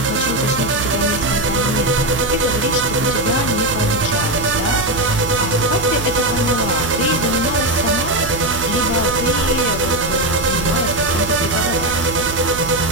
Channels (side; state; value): right; noise; hum, 9 dB below the sound